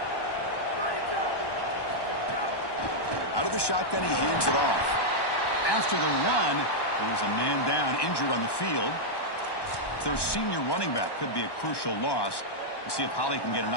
Out of the shotgun, he hands it off. After the run, there's a man down, injured on the field. Their senior running back could be a crucial loss. We'll see if Holly can get an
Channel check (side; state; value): right; late; 1.1 ms